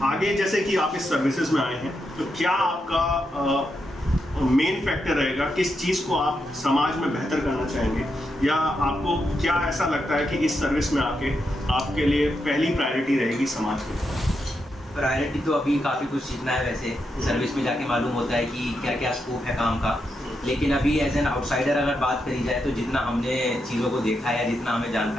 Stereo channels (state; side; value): normal; both; correlation 0.84